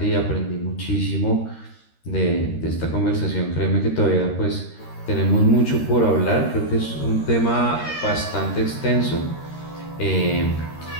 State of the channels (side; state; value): right; late; 13 ms